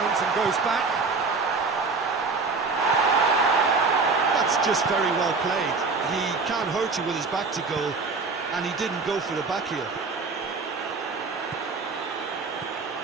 and goes back. That's just very well played. He can't hurt you with his back to goal, and he didn't go for the back heel.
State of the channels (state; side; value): quieter; left; 4.3 dB